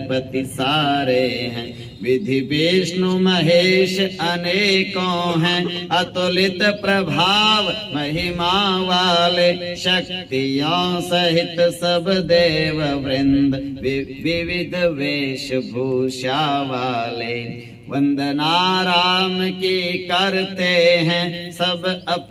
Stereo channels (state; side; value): identical; both; correlation 1.00